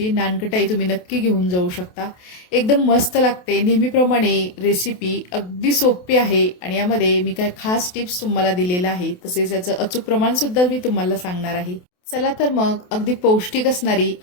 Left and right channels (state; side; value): late; right; 28 ms